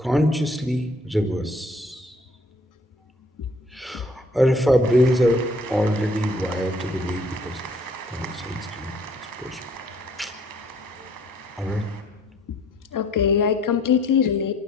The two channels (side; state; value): both; normal; correlation 0.60